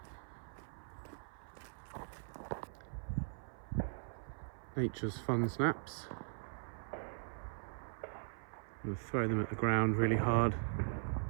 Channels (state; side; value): silent; left; 51 dB below the other